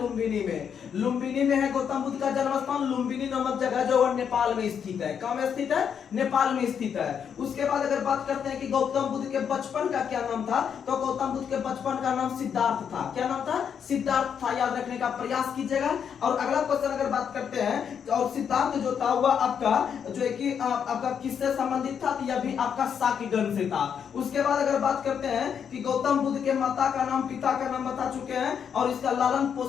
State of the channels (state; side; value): quieter; right; 7.6 dB